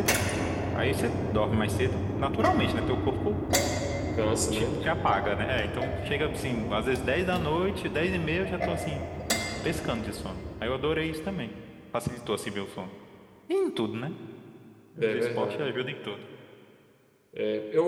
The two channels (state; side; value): identical; both; correlation 1.00